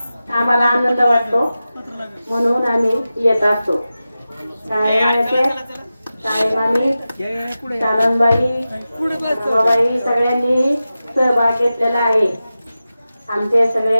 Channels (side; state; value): both; inverted; correlation -0.94